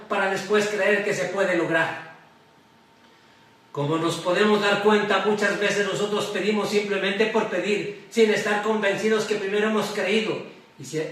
para después creer que se puede lograr. Como nos podemos dar cuenta, muchas veces nosotros pedimos simplemente por pedir, sin estar convencidos que primero hemos creído. Y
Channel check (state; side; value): identical; both; correlation 1.00